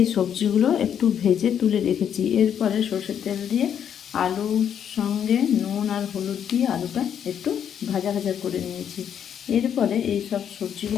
সবজিগুলো একটু ভেজে তুলে রেখেছি। এরপরে সরষের তেল দিয়ে আলুর সঙ্গে নুন আর হলুদ দিয়ে আলুটা একটু ভাজা ভাজা করে নিয়েছি। এরপরে এই সব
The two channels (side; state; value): right; quieter; 8.8 dB